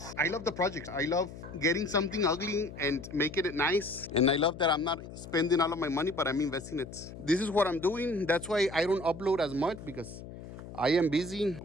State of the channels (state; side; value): noise; left; hum, 13 dB below the sound